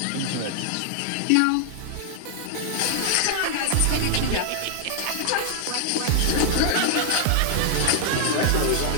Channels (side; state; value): both; different; correlation 0.00